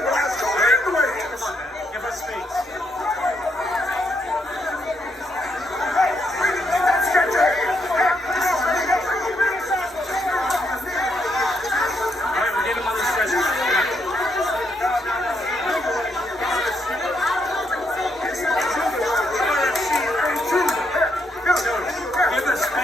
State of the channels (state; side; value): normal; both; correlation 0.77